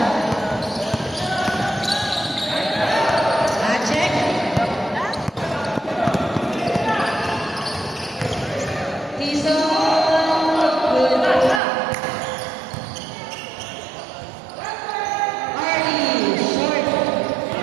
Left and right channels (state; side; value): drops out; left; at 11.6 s